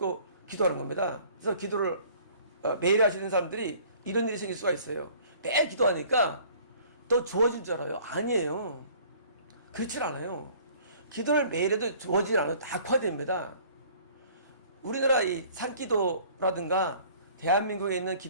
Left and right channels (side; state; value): both; inverted; correlation -0.53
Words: 기도하는 겁니다. 그래서 기도를 매일 하시는 사람들이 이런 일이 생길 수가 있어요. 매일 기도하니까 더 좋아질 줄 알아요. 아니에요. 그렇지 않아요. 기도를 매일 해도 좋아지지 않아요. 다 악화됩니다. 우리나라 이 산기도라든가 대한민국에 있는